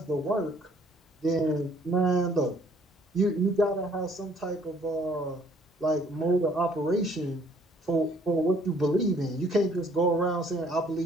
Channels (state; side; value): normal; both; correlation 0.61